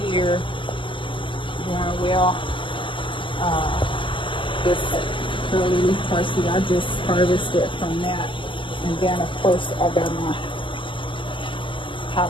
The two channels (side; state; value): right; late; 0.25 ms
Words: here, doing well. This curly leaf parsley, I just harvested from that. And then of course I got my